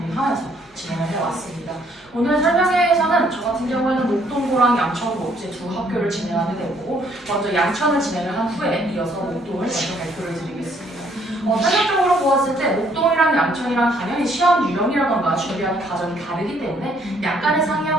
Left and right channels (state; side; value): normal; both; correlation 0.65